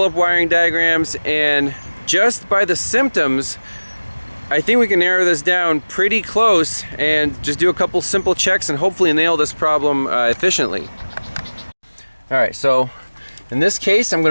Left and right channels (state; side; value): inverted; both; correlation -1.00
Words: up wiring diagrams, and just by the symptoms, I think we can narrow this down pretty close and just do a couple simple checks and hopefully nail this problem efficiently. All right, so in this case, I'm